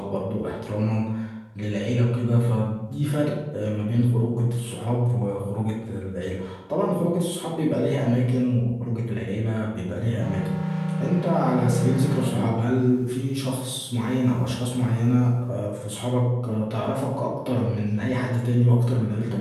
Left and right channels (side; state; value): both; identical; correlation 1.00